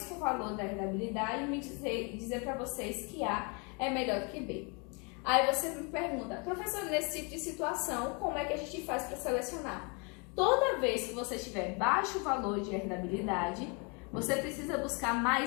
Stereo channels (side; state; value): right; quieter; 33.2 dB